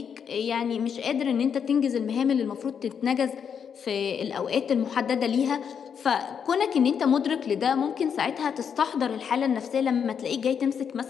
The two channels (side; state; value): right; quieter; 7.3 dB